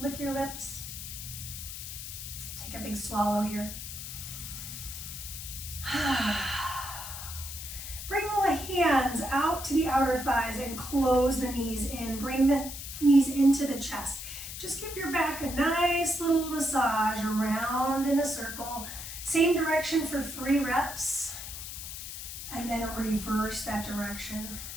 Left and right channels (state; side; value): noise; left; hiss, 9 dB below the sound